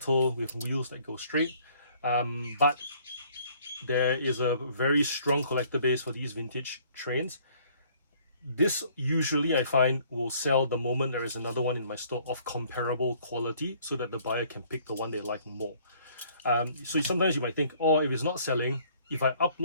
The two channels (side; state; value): both; inverted; correlation -0.60